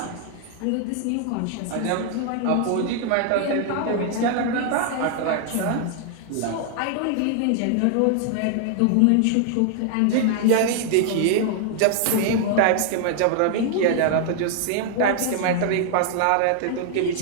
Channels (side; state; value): both; different; correlation 0.00